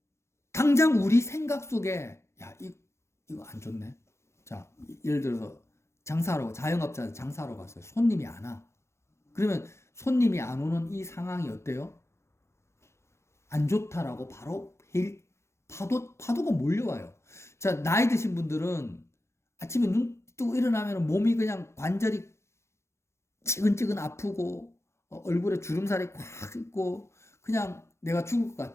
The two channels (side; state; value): right; late; 0.13 ms